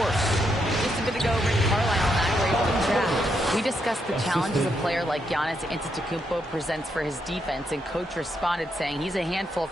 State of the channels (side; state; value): both; normal; correlation 0.79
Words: Just a bit ago, Rick Carlisle and I were able to chat. We discussed the challenges a player like Giannis Antetokounmpo presents for his defense, and Coach responded saying he's a handful